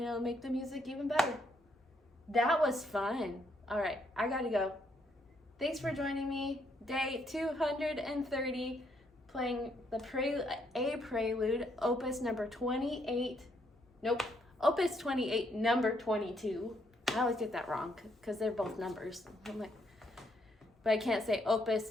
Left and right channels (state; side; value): normal; both; correlation 0.73